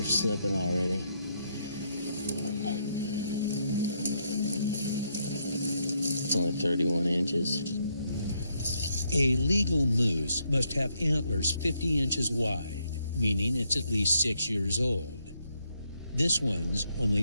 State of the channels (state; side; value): inverted; both; correlation -0.76